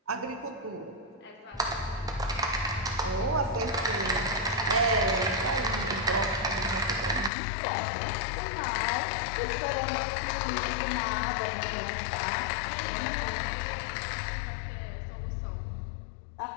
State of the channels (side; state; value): right; drops out; at 7.3 s